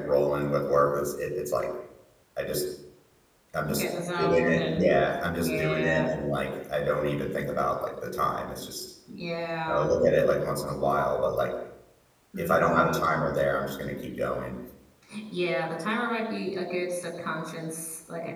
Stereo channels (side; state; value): both; identical; correlation 1.00